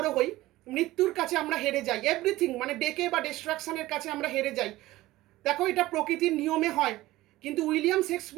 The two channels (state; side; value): quieter; left; 17.3 dB